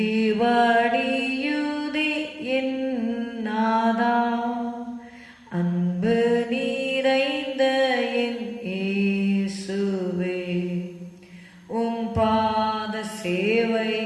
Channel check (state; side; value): identical; both; correlation 1.00